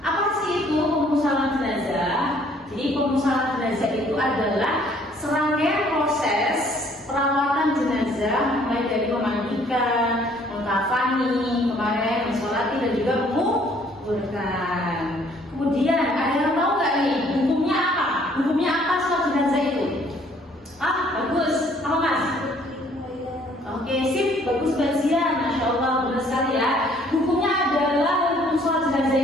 Apa sih itu pemusalan jenazah? Jadi pemusalan jenazah itu adalah serangkaian proses perawatan jenazah, mulai dari memandikan, mengkafani, kemarin mensolati dan juga menguburkan. Kemudian ada yang tahu nggak nih hukumnya apa? Hukumnya apa sholat jenazah itu? Bagus. Apa Mas? Oke, sip, bagus kajian, masya Allah, benar sekali ya. Hukumnya adalah hukum sholat jenazah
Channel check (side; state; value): both; normal; correlation 0.61